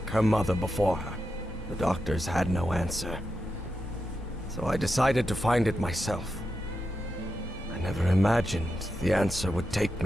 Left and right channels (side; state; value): both; normal; correlation 0.88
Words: her mother before her. The doctors had no answer. So I decided to find it myself. I never imagined the answer would take